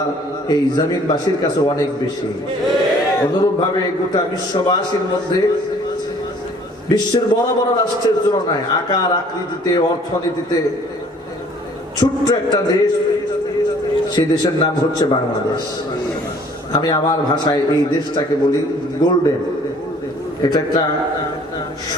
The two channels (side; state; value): both; normal; correlation 0.55